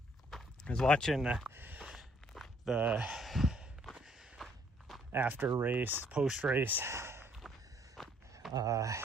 was watching the after race, post race,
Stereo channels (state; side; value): normal; both; correlation 0.65